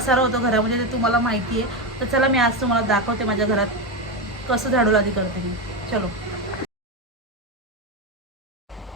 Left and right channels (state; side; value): normal; both; correlation 0.12